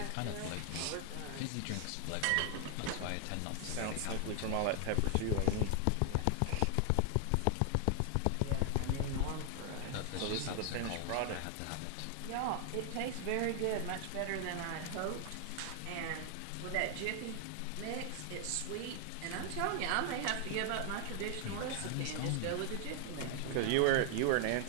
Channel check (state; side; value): different; both; correlation 0.00